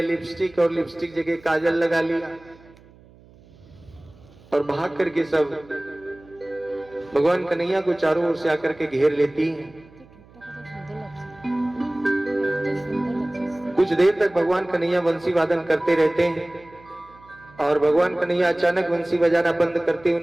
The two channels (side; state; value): right; noise; hum, 25 dB below the sound